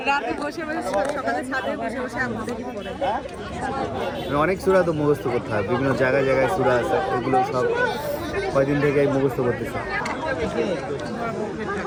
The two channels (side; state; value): both; identical; correlation 1.00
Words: রাতে বসে সকালে ছাদে বসে আম্মু দেখি পড়ে। অনেক সূরা তো মুখস্থ করতে হয়, বিভিন্ন জায়গায় জায়গায় সূরা আছে, এগুলো সব কয়দিন থেকে মুখস্থ করতেছে।